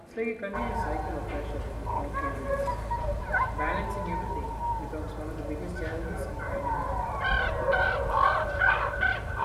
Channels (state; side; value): identical; both; correlation 1.00